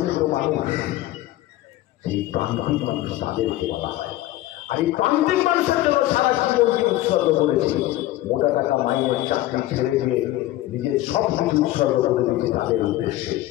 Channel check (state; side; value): quieter; right; 15.7 dB